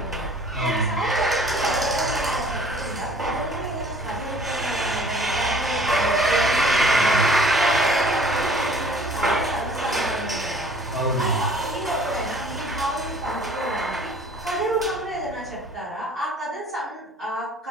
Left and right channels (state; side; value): normal; both; correlation 0.52